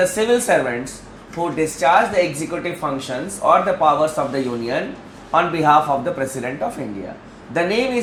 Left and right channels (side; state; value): both; identical; correlation 1.00